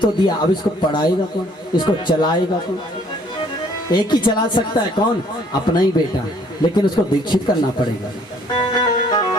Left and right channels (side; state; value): both; normal; correlation 0.60